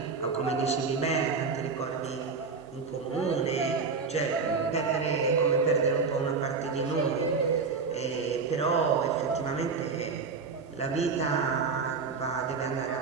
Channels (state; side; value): quieter; left; 5.0 dB